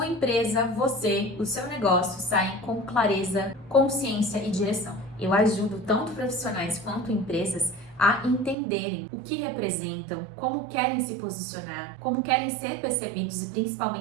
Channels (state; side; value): drops out; left; at 8.6 s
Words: empresa, você, o seu negócio saem com clareza, consciência e direção. Eu ajudo tanto profissionais quanto empresas a entenderem o que representam, como querem se posicionar, como querem ser percebidos e